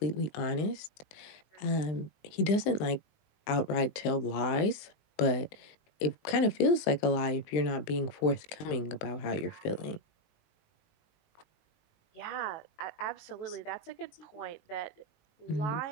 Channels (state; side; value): late; right; 20 ms